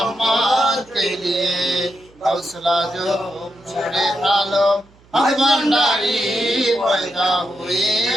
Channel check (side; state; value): right; noise; hum, 29 dB below the sound